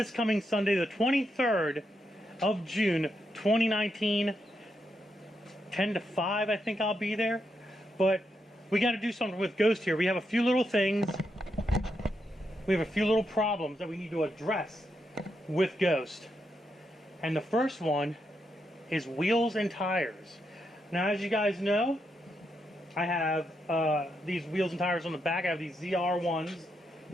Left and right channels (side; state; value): both; normal; correlation 0.82